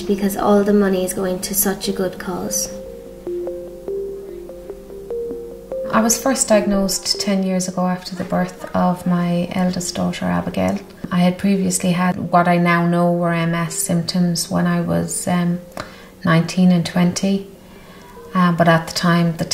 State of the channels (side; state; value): both; identical; correlation 1.00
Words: because all the money is going to such a good cause. I was first diagnosed 10 years ago after the birth of my eldest daughter, Abigail. I had previously had what I now know were MS symptoms when I was 19 and 20, but at the time the